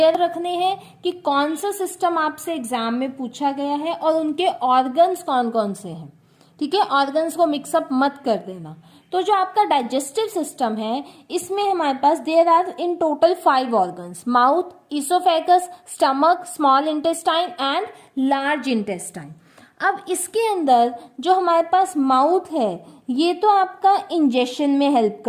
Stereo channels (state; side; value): identical; both; correlation 1.00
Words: रखने हैं कि कौन सा सिस्टम आपसे एग्जाम में पूछा गया है और उनके ऑर्गन्स कौन कौन से हैं। ठीक है, ऑर्गन्स को मिक्सअप मत कर देना। तो जो आपका डाइजेस्टिव सिस्टम है इसमें हमारे पास there are in total 5 organs, mouth, oesophagus, stomach, small intestine and large intestine. अब इसके अंदर जो हमारे पास माउथ है ये तो आपका इंजेशन में हेल्प